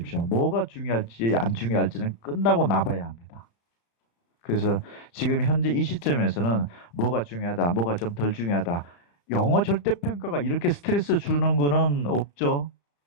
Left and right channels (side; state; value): right; late; 35 ms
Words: 뭐가 중요할지 안 중요할지는 끝나고 나봐야 합니다. 그래서 지금 현재 이 시점에서는 뭐가 중요하다, 뭐가 좀 덜 중요하다. 영어 절대평가가 이렇게 스트레스 주는 거는 없죠.